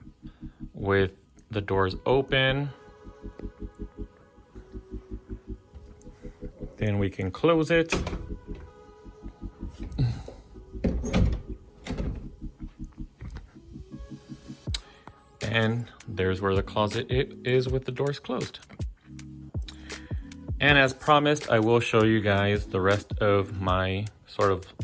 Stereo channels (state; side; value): identical; both; correlation 1.00